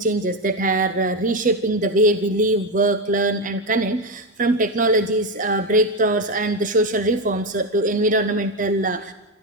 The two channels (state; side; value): normal; both; correlation 0.11